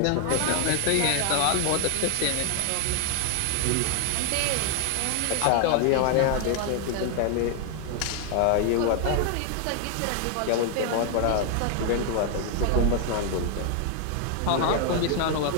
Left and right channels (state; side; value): different; both; correlation 0.00